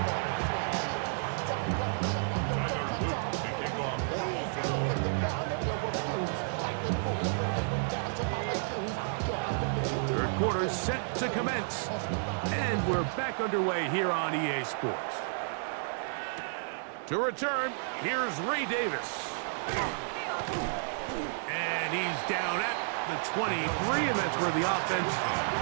Third quarter set to commence. And we're back underway here on EA Sports. To return, here's Ray Davis. And he's down at the 23, and that's where the offense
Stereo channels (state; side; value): silent; left; digital silence